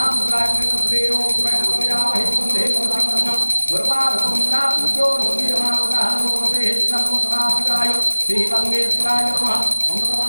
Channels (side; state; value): both; inverted; correlation -1.00